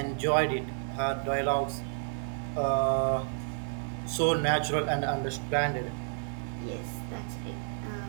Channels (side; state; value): left; silent; digital silence